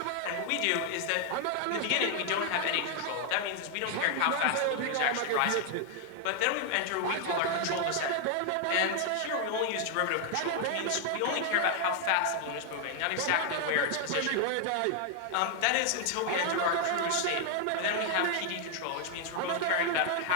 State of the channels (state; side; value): different; both; correlation 0.00